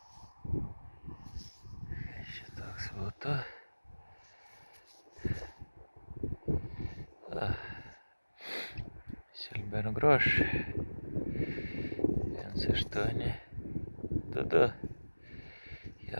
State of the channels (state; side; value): inverted; both; correlation -1.00